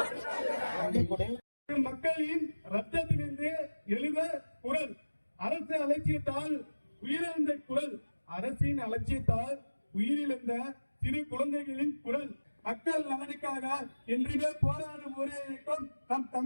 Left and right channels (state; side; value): inverted; both; correlation -1.00